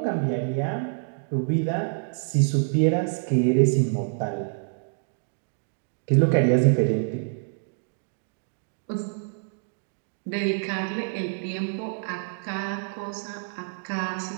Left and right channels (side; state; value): left; silent; digital silence